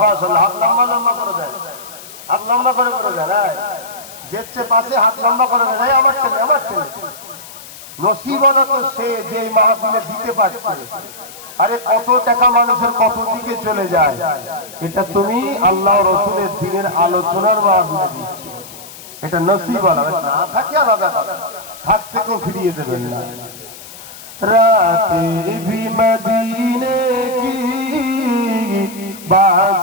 हाथ लंबा लंबा করে দেন, হাত লম্বা করে দেন। যেচ্ছে পাশে হাত লম্বা করে দেন, আমার টেনে নসিব হলো তো সে যে মাহফিলে দিতে পারছে। আরে কত টাকা মানুষের কত দিকে চলে যায়, এটা তুমি আল্লাহ রসুলের দিনের আলোচনার মাহফিলে দিচ্ছ, এটা নসিব হলো। না থাকে আলাদা কথা, থাকতে কেউ ফিরিয়ে দেবেন না। রাতে ভি মদিনে কি,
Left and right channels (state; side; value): noise; left; hiss, 17 dB below the sound